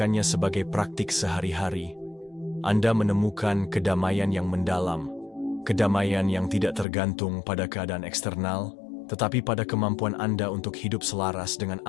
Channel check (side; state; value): right; drops out; at 6.9 s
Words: sebagai praktik sehari-hari, Anda menemukan kedamaian yang mendalam, kedamaian yang tidak tergantung pada keadaan eksternal, tetapi pada kemampuan Anda untuk hidup selaras dengan